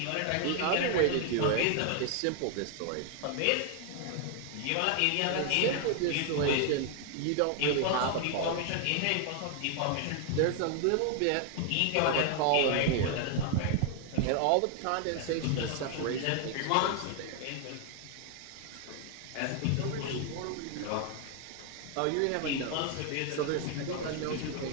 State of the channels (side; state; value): both; different; correlation 0.00